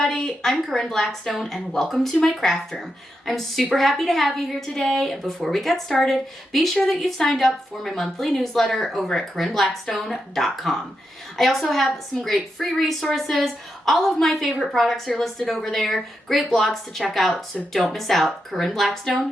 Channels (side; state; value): both; normal; correlation 0.85